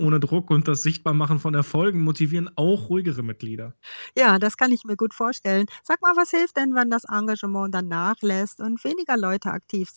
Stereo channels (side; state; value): both; inverted; correlation -1.00